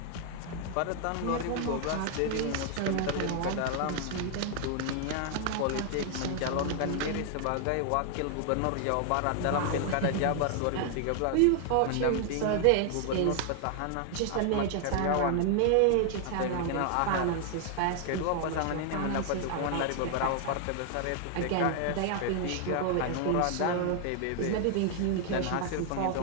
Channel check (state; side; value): different; both; correlation 0.00